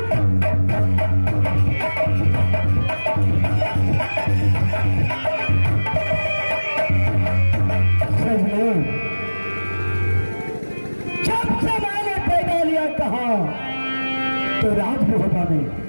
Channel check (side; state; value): both; inverted; correlation -1.00